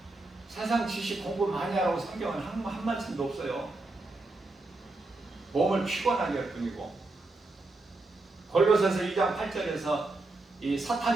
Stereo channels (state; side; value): quieter; left; 3.0 dB